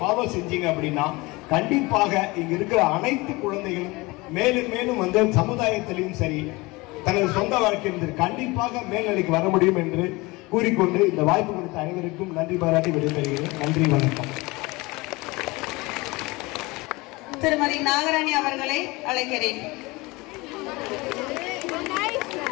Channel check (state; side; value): quieter; right; 23.2 dB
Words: செஞ்சீங்க அப்படின்னா கண்டிப்பாக இங்க இருக்கிற அனைத்து குழந்தைகளும் மேலும் மேலும் சமுதாயத்திலையும் சரி தனது சொந்த வாழ்க்கையில் கண்டிப்பாக மேல்நிலைக்கு வர முடியும் என்று கூறிக்கொண்டு இந்த வாய்ப்பு கொடுத்த அனைவருக்கும் நன்றி பாராட்டி விடைபெறுகிறேன். நன்றி, வணக்கம். திருமதி நாகராணி அவர்களை அழைக்கிறேன்.